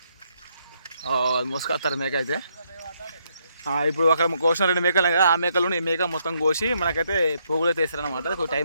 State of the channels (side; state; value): both; inverted; correlation -0.75